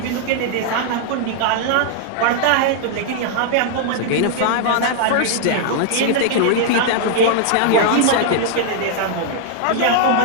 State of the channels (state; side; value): different; both; correlation 0.00